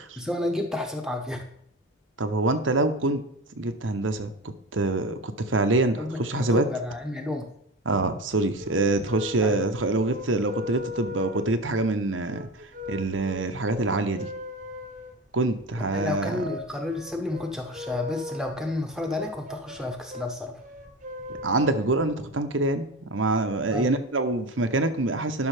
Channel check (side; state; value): both; normal; correlation 0.28